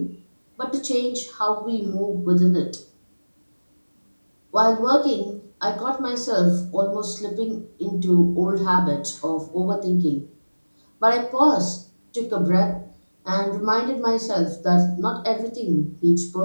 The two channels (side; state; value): both; inverted; correlation -1.00